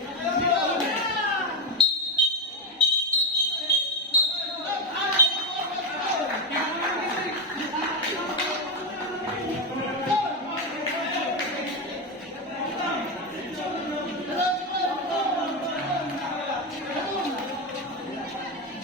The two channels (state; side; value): normal; both; correlation 0.11